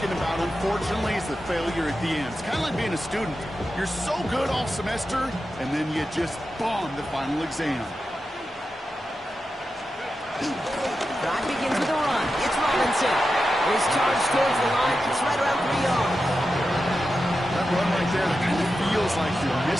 about, unfortunately, is the failure at the end. It's kind of like being a student. You're so good all semester, and then you just bomb the final exam. Drive begins with a run. It's Robinson. His charge towards the line. It's right around 3 yards. That run right there, that kind of feels like your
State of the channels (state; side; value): normal; both; correlation 0.90